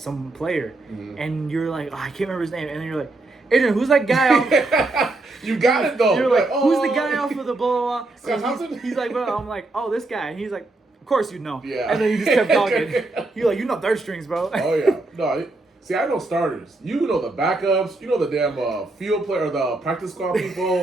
player. Mm-hmm. And you're like, I can't remember his name. And then you're like, Adrian, who's that guy off? You got it though. You're like, oh. who's the guy off of the blah, blah, Scott blah. Thompson? He's like, well, I'm like, oh, this guy. And he's like, of course you know. Yeah. And then you just kept talking. You're like, you know third strings, bro. Oh yeah. No, see, I know starters. You know the backups. You know the damn field player, the practice squad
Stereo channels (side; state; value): left; quieter; 3.0 dB